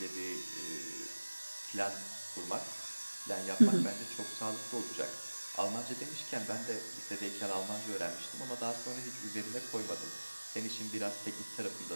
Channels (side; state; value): both; inverted; correlation -1.00